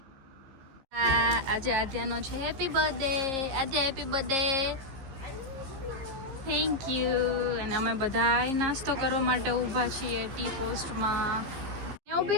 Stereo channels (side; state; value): left; late; 15 ms